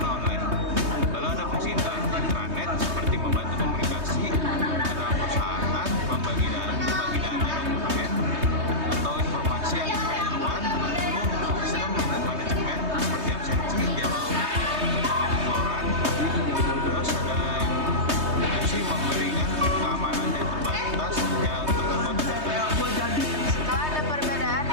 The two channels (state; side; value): late; left; 3.2 ms